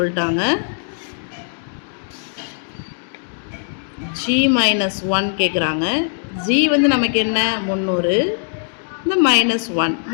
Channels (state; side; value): silent; right; digital silence